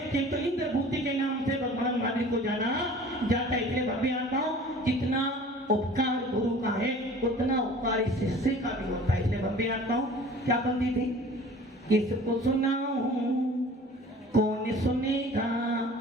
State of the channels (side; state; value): both; normal; correlation 0.46